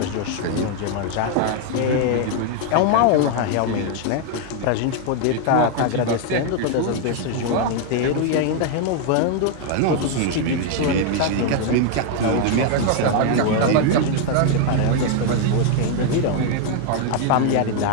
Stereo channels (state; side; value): different; both; correlation 0.00